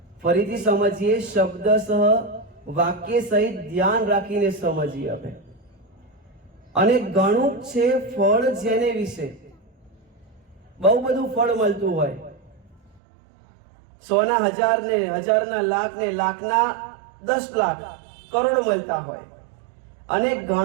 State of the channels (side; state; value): left; drops out; at 13.0 s